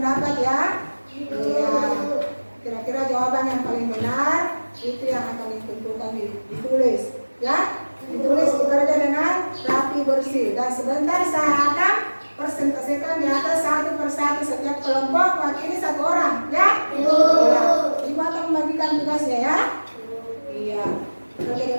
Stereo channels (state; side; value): inverted; both; correlation -1.00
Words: ya. Iya. Kira-kira jawaban yang paling benar itu yang akan ditentukan ditulis, ya. Ditulis, bekerja dengan rapi bersih. Dan sebentar saya akan presentasikan di atas satu persatu setiap kelompok wakili 1 orang, ya. Iya. Ibu akan membagikan tugasnya ya. Iya. Bekerja